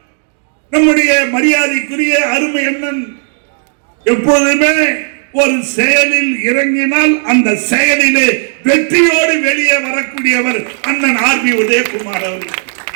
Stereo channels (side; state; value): left; silent; digital silence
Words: நம்முடைய மரியாதைக்குரிய அருமை அண்ணன் எப்பொழுதுமே ஒரு செயலில் இறங்கினால் அந்த செயலிலே வெற்றியோடு வெளியே வரக்கூடியவர் அண்ணன் RB உதயகுமார் அவர்கள்.